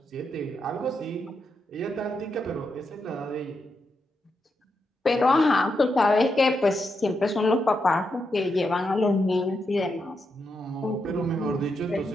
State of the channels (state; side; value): normal; both; correlation 0.83